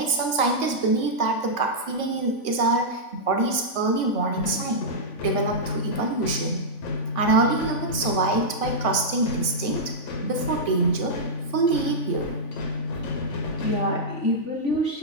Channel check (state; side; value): late; right; 3.5 ms